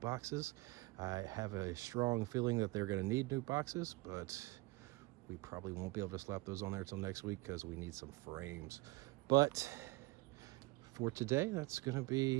I have a strong feeling that they're going to need new boxes, but we probably won't be able to slap those on there until next week because we need some frames. But for today, that's going to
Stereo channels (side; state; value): left; quieter; 23.0 dB